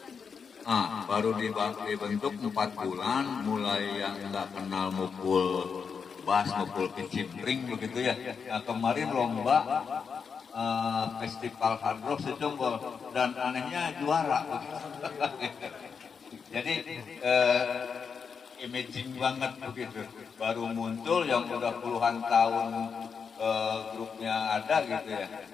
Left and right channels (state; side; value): quieter; right; 6.0 dB